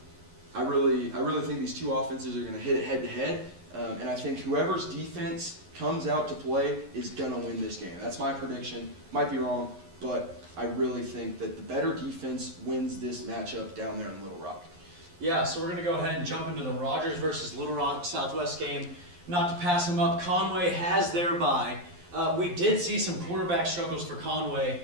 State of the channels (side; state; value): left; late; 11 ms